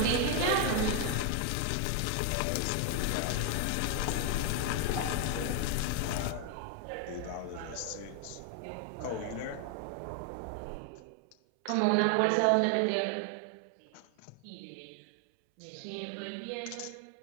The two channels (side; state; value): both; different; correlation 0.00